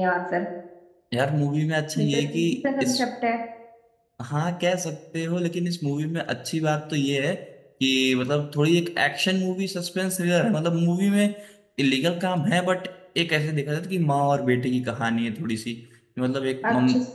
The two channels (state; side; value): identical; both; correlation 1.00